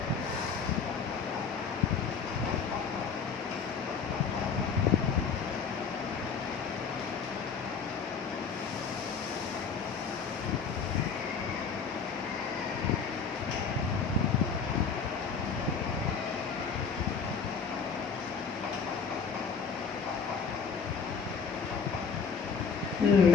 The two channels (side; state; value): right; quieter; 5.8 dB